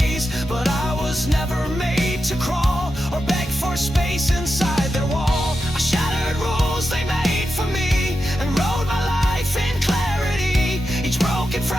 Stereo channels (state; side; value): normal; both; correlation 0.89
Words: But I was never made to crawl or beg for space inside their wall. I shattered rules they made for me and wrote my life in clarity. Each broken